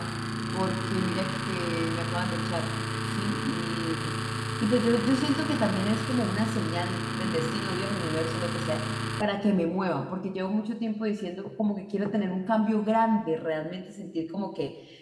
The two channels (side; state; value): both; identical; correlation 1.00